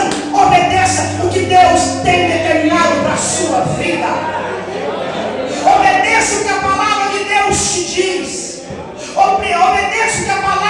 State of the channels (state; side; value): identical; both; correlation 1.00